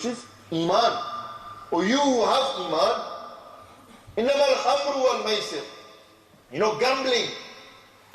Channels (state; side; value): identical; both; correlation 1.00